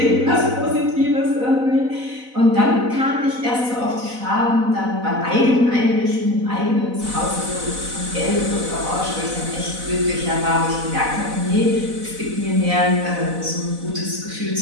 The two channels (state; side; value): late; left; 4.0 ms